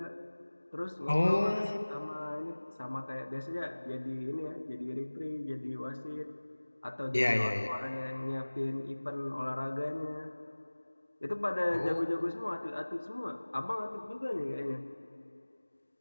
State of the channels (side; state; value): both; inverted; correlation -1.00